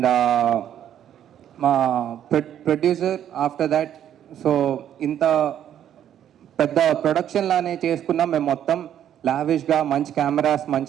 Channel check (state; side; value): quieter; left; 10.3 dB